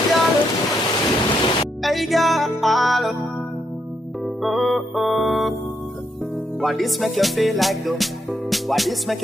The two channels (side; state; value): both; normal; correlation 0.78